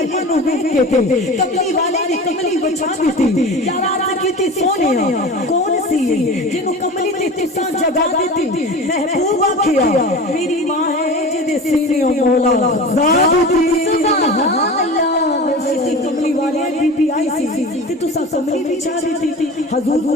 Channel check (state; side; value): normal; both; correlation 0.33